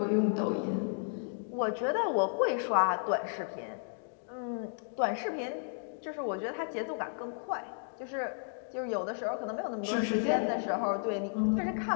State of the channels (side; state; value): right; silent; digital silence